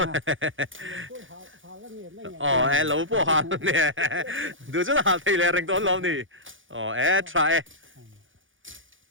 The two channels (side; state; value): left; late; 0.57 ms